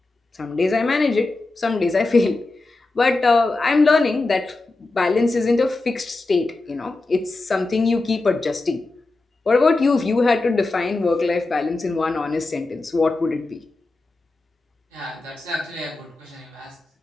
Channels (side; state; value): right; quieter; 3.2 dB